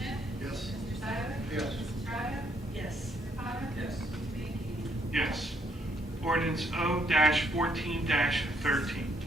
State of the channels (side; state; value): both; normal; correlation 0.71